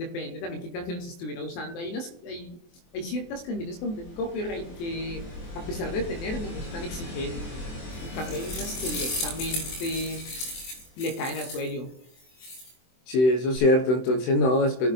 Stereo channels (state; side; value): late; right; 23 ms